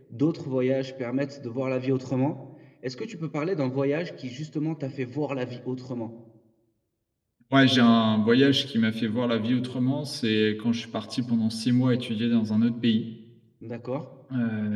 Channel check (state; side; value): identical; both; correlation 1.00